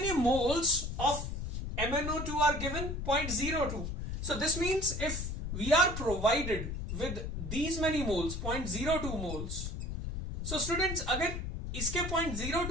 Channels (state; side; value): noise; left; rumble, 4 dB below the sound